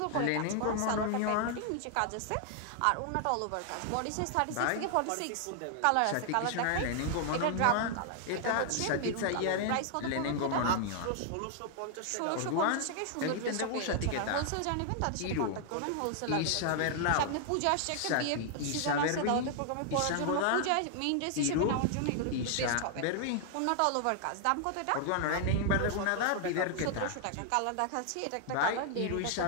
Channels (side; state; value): both; different; correlation 0.00